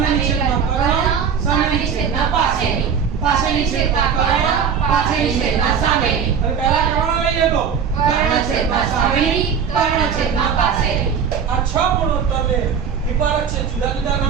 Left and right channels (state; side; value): quieter; left; 7.0 dB